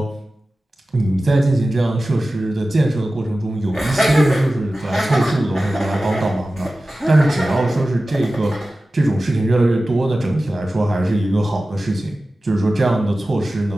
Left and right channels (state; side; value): normal; both; correlation 0.95